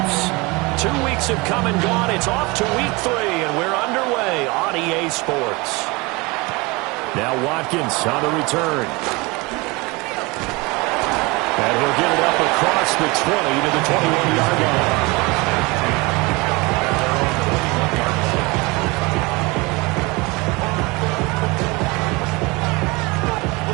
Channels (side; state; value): left; quieter; 25.1 dB